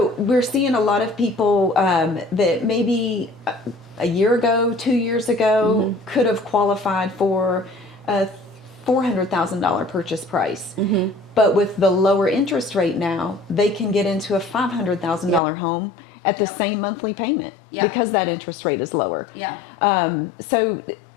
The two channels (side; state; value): right; drops out; at 15.4 s